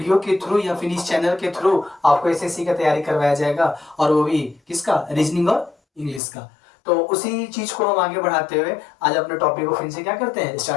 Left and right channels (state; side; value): drops out; right; at 6.2 s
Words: के थ्रू या फिर इस चैनल के थ्रू आपको एसएससी का तैयारी करवाया जाएगा, और वो भी किसका, रीजनिंग और इंग्लिश का। तो उसी चीज को हम आगे बढ़ाते हुए आज अपने टॉपिक को फिर से क्या करते हैं,